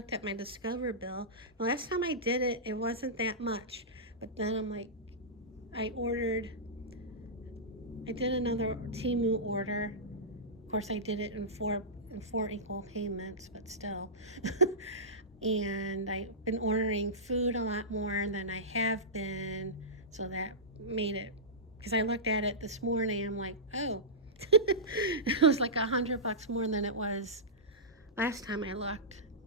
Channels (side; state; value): both; normal; correlation -0.16